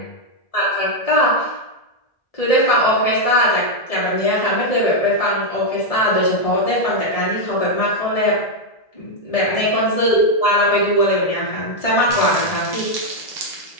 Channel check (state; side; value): late; right; 1.7 ms